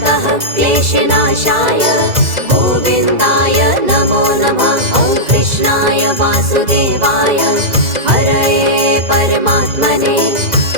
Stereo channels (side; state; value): left; late; 2.0 ms